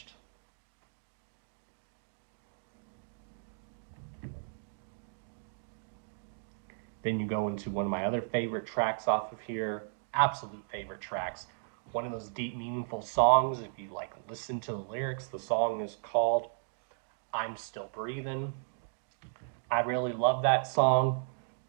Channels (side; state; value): left; silent; digital silence